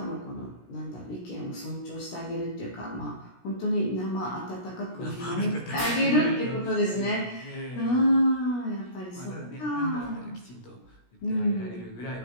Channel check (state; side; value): late; right; 17 ms